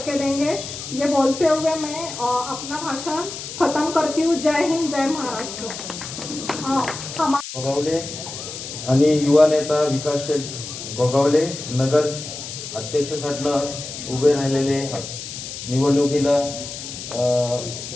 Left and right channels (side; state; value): left; noise; hiss, 9 dB below the sound